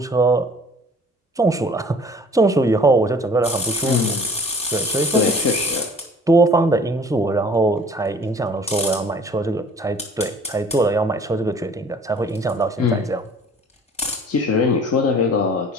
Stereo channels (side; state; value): both; normal; correlation 0.50